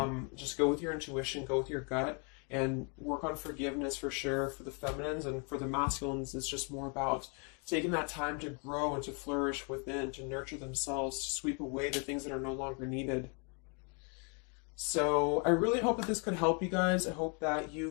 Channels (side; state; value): right; quieter; 36.4 dB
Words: just go with your intuition, go with your gut. And work on forgiveness for sure for the feminines, and for the masculines, it's just more about taking that time to grow and to flourish within, to nurture themselves, to sweep away the things that are no longer needed. So I really hope that this could help you guys. I hope that